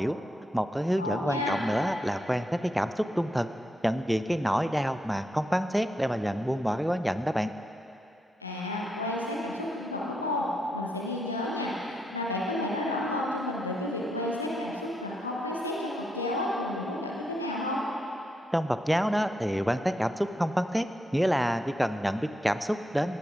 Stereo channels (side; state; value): both; normal; correlation 0.81